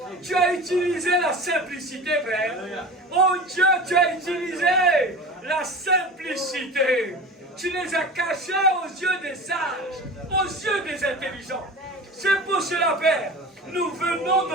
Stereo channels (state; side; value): normal; both; correlation 0.34